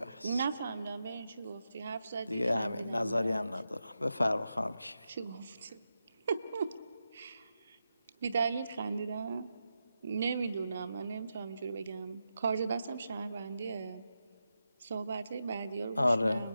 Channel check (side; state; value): both; inverted; correlation -0.88